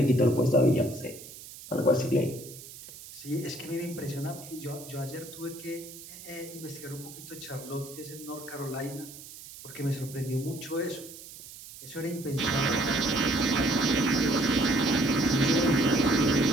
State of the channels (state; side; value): noise; right; hiss, 15 dB below the sound